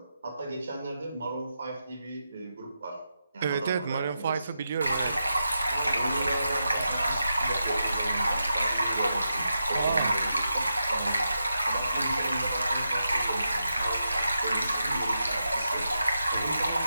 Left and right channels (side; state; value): both; inverted; correlation -0.87